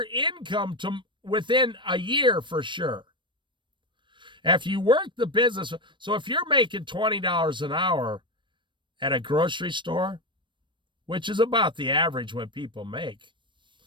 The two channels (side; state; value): left; late; 0.23 ms